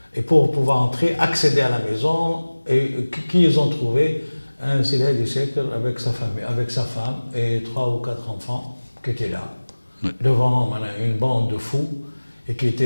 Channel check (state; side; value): inverted; both; correlation -1.00